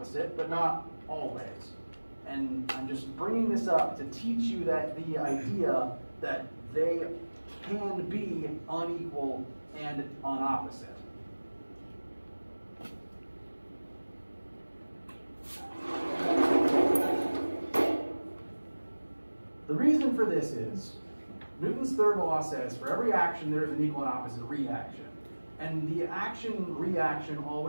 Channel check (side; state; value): both; inverted; correlation -1.00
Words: but not always. And I'm just bringing this up to teach you that the idea that they can be unequal and unopposite. The reason for this is Newton's third law says for every action there is an equal and opposite reaction. And the action-reaction